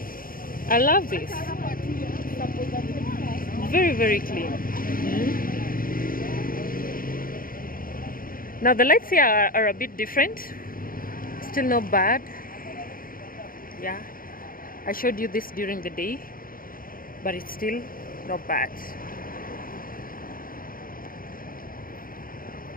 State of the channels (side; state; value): right; late; 0.41 ms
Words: I love this. Very, very clean. Now the lights here are a bit different. Still not bad. Yeah. I showed you this during the day, but it's still not bad.